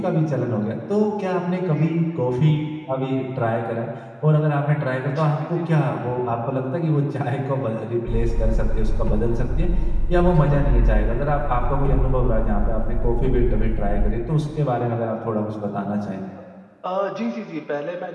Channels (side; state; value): both; identical; correlation 1.00